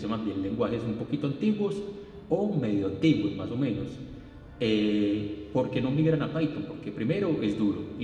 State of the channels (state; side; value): identical; both; correlation 1.00